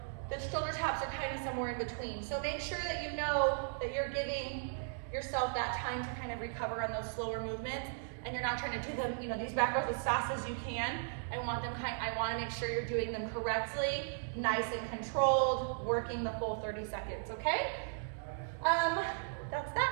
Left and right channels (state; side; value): silent; left; digital silence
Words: the shoulder taps are kind of somewhere in between. So make sure that you know that you're giving yourself that time to kind of recover on those slower movements, and you're not trying to do them, these back rows as fast as you can. I want to make sure you're doing them correctly, nice and controlled, working the full 30 seconds, okay? That's